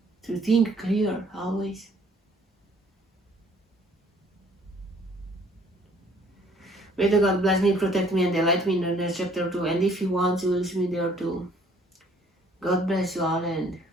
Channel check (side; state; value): both; normal; correlation 0.59